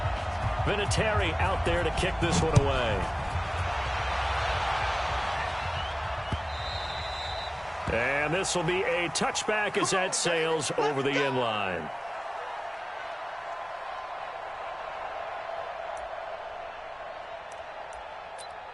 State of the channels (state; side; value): identical; both; correlation 1.00